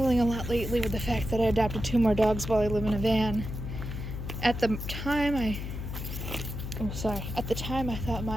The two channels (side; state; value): left; noise; hum, 6 dB below the sound